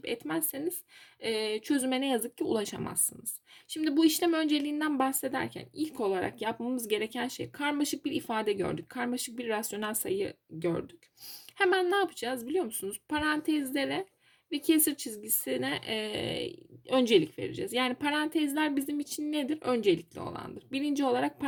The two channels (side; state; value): both; identical; correlation 1.00